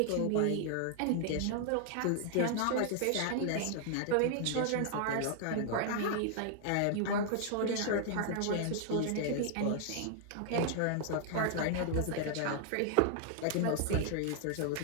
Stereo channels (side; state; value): both; different; correlation 0.00